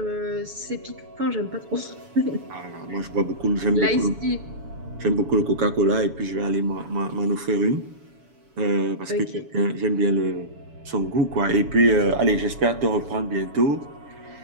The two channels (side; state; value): left; late; 7.0 ms